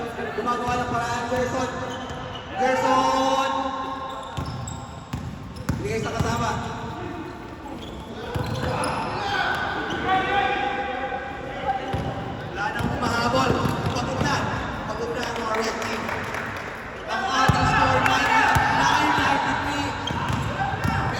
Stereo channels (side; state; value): both; identical; correlation 1.00